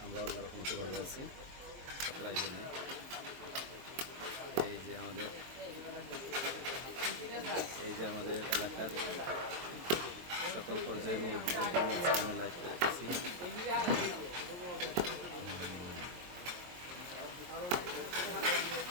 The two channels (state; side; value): late; left; 23 ms